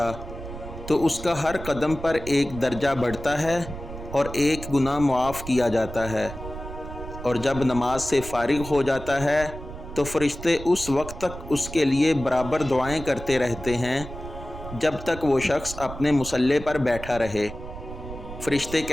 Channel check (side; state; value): right; noise; rumble, 11 dB below the sound